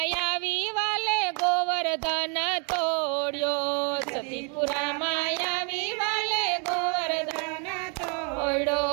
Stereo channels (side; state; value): left; quieter; 36.2 dB